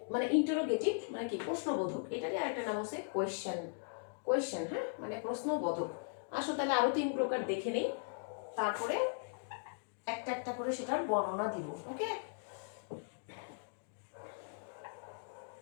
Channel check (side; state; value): right; silent; digital silence